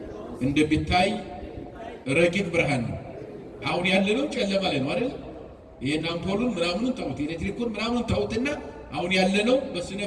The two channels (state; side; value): identical; both; correlation 1.00